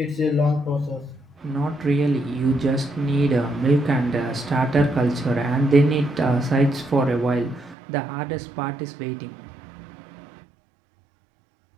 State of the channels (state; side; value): drops out; left; at 7.8 s